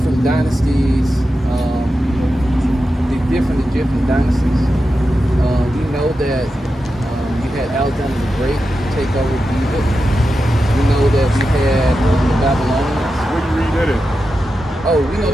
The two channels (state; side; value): normal; both; correlation 0.90